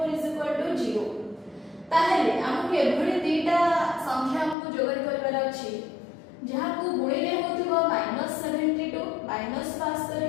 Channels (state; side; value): drops out; right; at 4.5 s